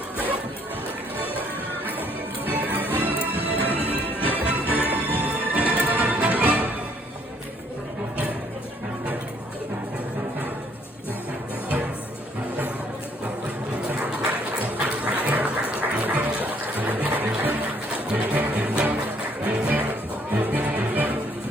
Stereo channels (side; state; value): both; normal; correlation 0.65